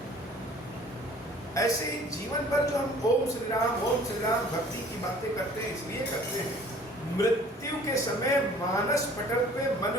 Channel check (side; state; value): both; normal; correlation 0.51